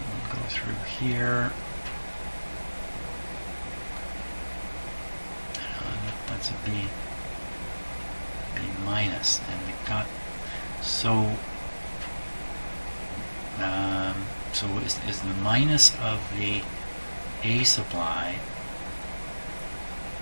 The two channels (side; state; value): both; inverted; correlation -1.00